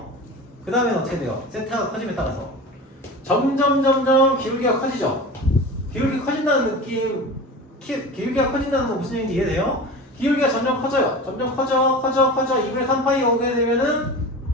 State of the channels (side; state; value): both; normal; correlation 0.32